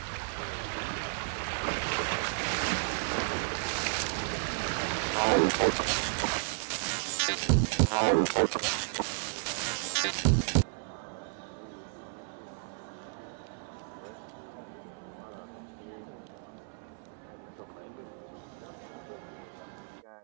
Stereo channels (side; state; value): left; silent; 56 dB below the other